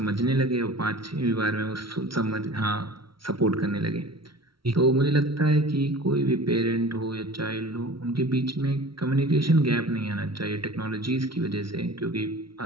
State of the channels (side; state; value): left; late; 0.74 ms